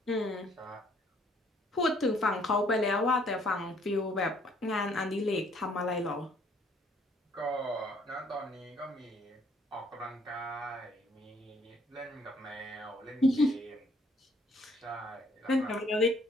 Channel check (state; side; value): normal; both; correlation 0.64